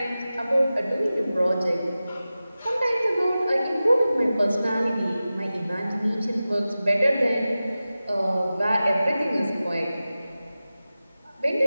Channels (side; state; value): both; inverted; correlation -0.95